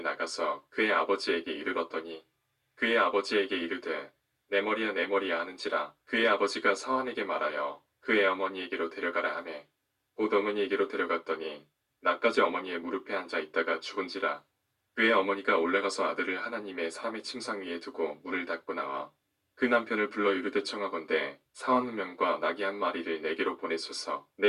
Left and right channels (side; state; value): both; identical; correlation 1.00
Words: 나가서 그의 아버지에게 이르렀더니 그의 아버지에게 이르되 내 머리야 내 머리야 하는지라. 그의 아버지가 사환에게 말하여 그의 어머니에게로 데려가라 하매 곧 어머니에게로 데려갔더니 나까지 어머니의 무릎에 앉아 있다가 죽은지라. 그의 어머니가 올라가서 아들을 하나님의 사람의 침상 위에 두고 문을 닫고 나와 그 남편을 불러 이르되 청하건대 사원 한 명과 나귀 한 마리를 내게로 보내소서.